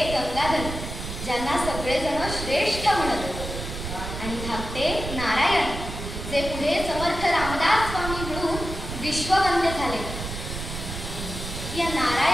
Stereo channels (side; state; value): right; noise; rumble, 7 dB below the sound